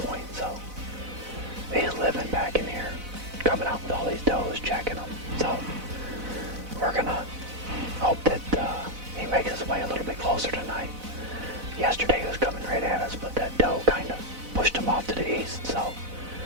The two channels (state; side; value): late; left; 4.0 ms